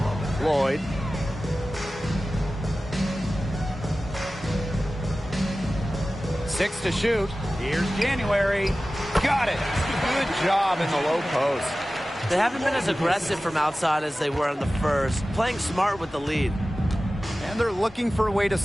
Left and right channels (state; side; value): normal; both; correlation 0.96